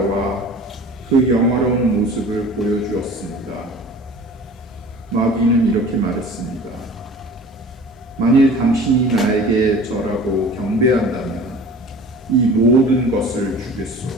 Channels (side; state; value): both; normal; correlation 0.43